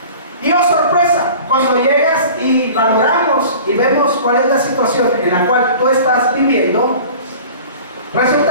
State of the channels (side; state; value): both; inverted; correlation -0.42